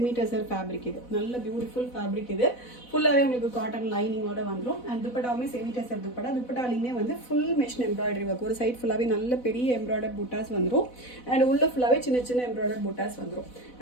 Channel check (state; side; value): late; right; 4.1 ms